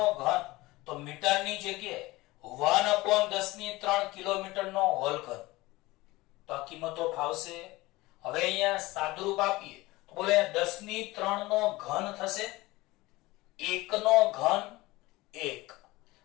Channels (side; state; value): right; quieter; 20.3 dB